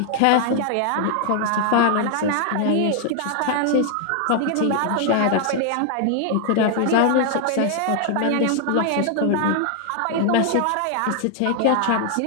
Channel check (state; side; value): different; both; correlation 0.00